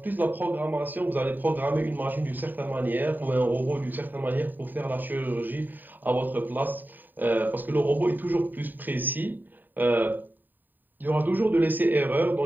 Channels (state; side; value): late; left; 0.090 ms